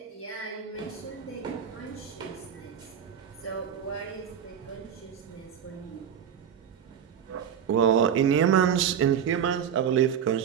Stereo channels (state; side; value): quieter; left; 8.4 dB